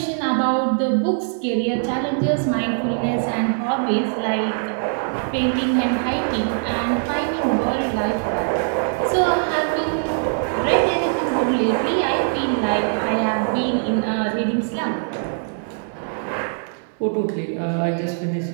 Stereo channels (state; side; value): silent; left; 64 dB below the other